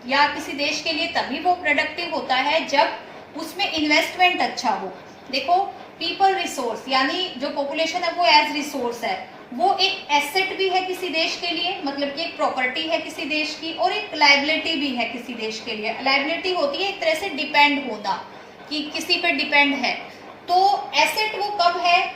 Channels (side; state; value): both; identical; correlation 1.00